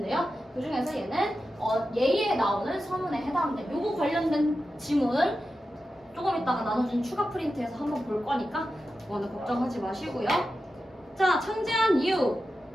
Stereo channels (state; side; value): normal; both; correlation 0.91